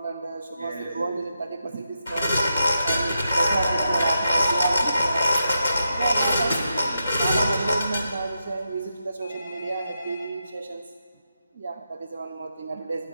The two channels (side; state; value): both; inverted; correlation -0.85